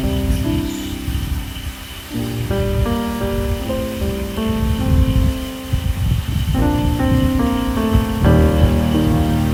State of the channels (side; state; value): both; identical; correlation 1.00